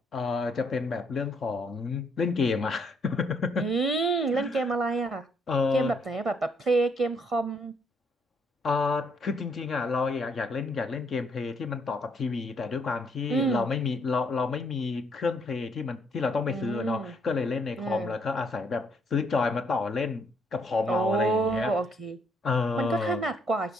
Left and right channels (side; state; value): both; normal; correlation 0.70